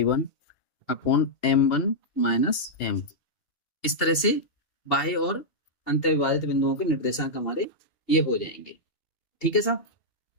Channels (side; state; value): right; late; 2.7 ms